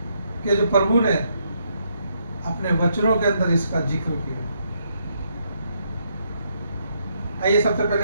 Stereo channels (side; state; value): both; inverted; correlation -0.75